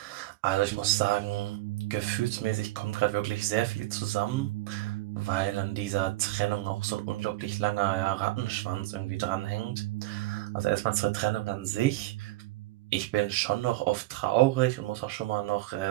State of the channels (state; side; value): quieter; left; 17.8 dB